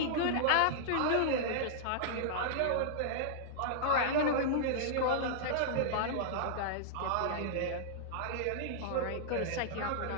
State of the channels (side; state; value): both; different; correlation -0.02